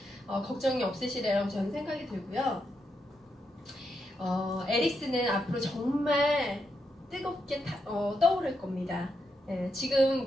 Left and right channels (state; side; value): normal; both; correlation 0.83